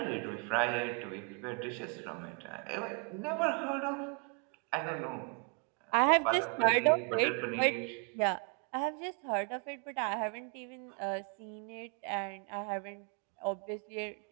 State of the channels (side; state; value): left; quieter; 35.1 dB